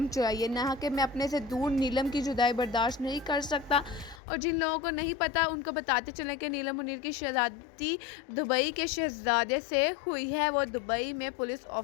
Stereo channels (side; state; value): right; drops out; at 4.2 s